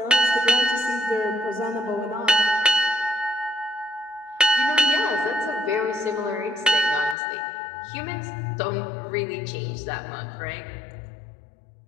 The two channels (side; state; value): right; drops out; at 7.2 s